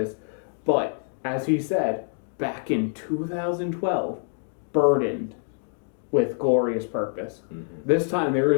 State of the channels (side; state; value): right; silent; digital silence